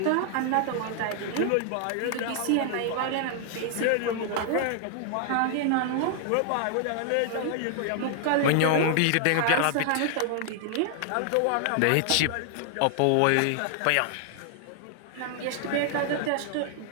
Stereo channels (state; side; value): different; both; correlation 0.00